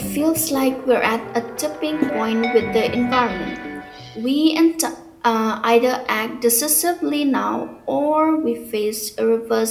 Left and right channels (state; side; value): identical; both; correlation 1.00